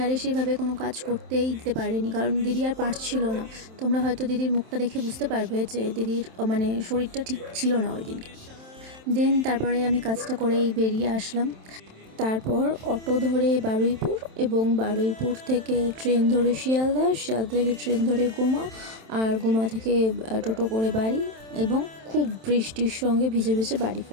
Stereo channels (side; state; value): left; late; 27 ms